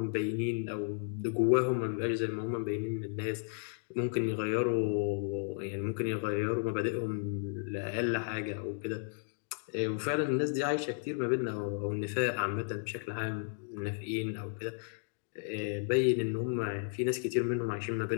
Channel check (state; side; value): silent; right; 55 dB below the other